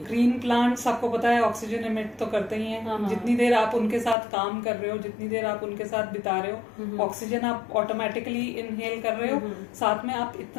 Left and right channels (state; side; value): drops out; right; at 4.2 s